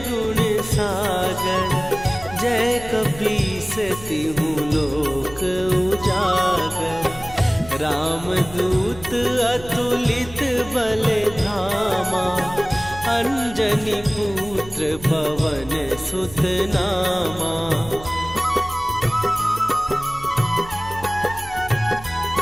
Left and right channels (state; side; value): noise; right; hum, 17 dB below the sound